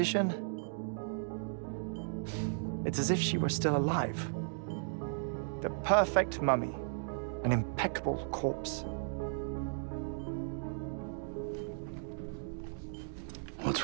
It's as if she were still alive. The perfect mummy. An impeccable corpse. What's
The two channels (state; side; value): silent; left; digital silence